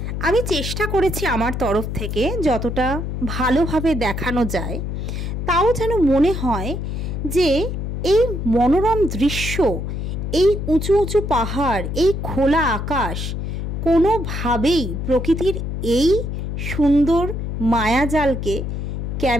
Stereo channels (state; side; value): noise; left; hum, 4 dB below the sound